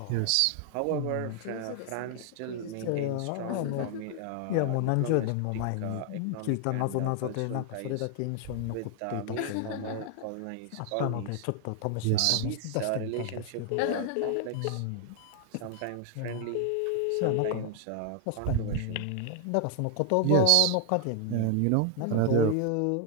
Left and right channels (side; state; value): both; different; correlation 0.00